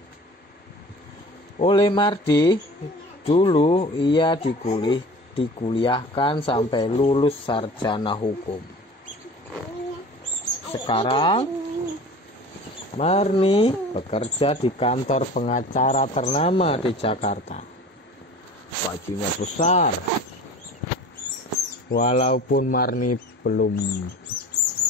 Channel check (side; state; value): both; normal; correlation 0.41